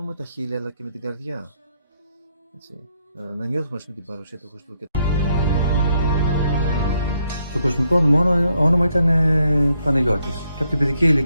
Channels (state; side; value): inverted; both; correlation -0.75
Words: με τα χείλη, αλλά και με την καρδιά. Έτσι, να νιώθουμε με την παρουσία του Χριστού. Το κοσμικό όνομα ήταν Παναγιώτης. Και από την παιδική